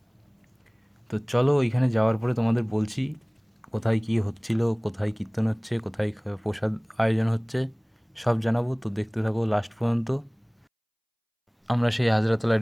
তো চলো ওইখানে যাওয়ার পরে তোমাদের বলছি কোথায় কী হচ্ছিল, কোথায় কীর্তন হচ্ছে, কোথায় প্রসাদ আয়োজন হচ্ছে, সব জানাবো। তো দেখতে থাকো লাস্ট পর্যন্ত। আমরা সেই হাজরাতলায়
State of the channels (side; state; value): both; identical; correlation 1.00